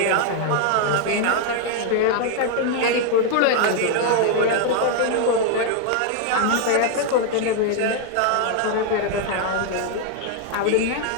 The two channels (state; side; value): different; both; correlation 0.00